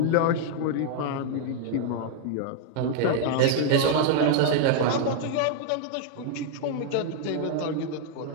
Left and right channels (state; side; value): different; both; correlation 0.00